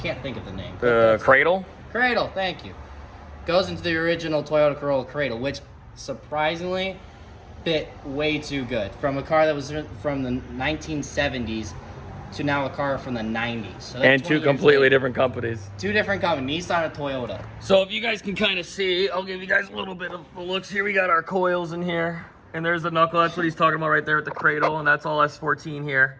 think of the name. Cradle? Cradle, thank you. Goes into the original Toyota Corolla cradle, which surprisingly fit way too good. From a car that was from the 1970s to now a car from the 90s. So and two completely different companies. Two different companies, Nissan and Toyota. So if you guys can kind of see, I'll give you guys a little bit of the looks here. We got our coils in here. And there's the knuckle. That's what he's talking about right there at the cradle. And that's all S14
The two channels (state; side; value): identical; both; correlation 1.00